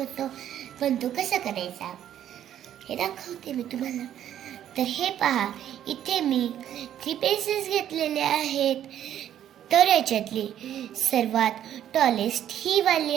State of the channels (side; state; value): left; quieter; 10.8 dB